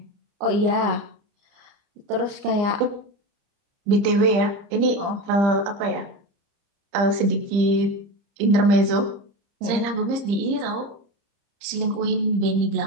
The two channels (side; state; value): left; late; 30 ms